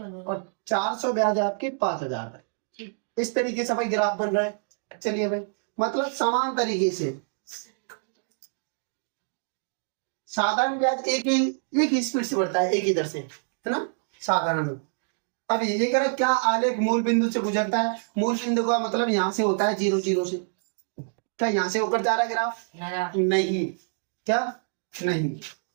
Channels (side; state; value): left; silent; digital silence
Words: और 400 ब्याज है आपकी 5000 रुपए। इस तरीके से भाई ग्राफ बन रहा है। चलिए भाई, मतलब समान तरीके से साधारण ब्याज एक ही स्पीड से बढ़ता है, एक ही दर से, है ना, साधारण। अब ये कह रहा है क्या आलेख मूल बिंदु से गुजरता है? मूल बिंदु का मतलब यहाँ से होता है 0 0 से। क्या यहाँ से होकर जा रहा है ग्राफ? नहीं। क्या? नहीं।